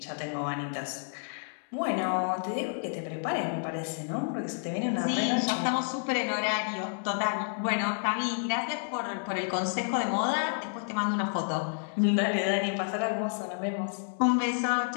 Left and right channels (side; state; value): right; silent; digital silence